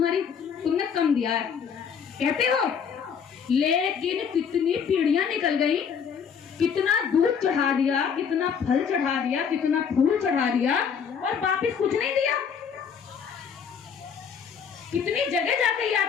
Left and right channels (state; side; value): quieter; right; 6.9 dB